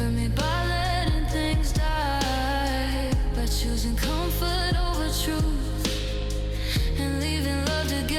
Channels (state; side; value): identical; both; correlation 1.00